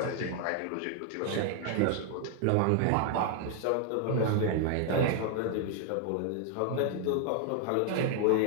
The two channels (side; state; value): both; different; correlation 0.00